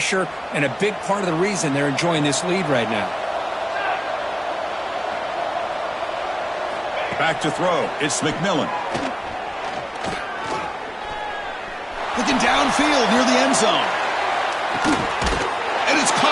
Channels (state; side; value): identical; both; correlation 1.00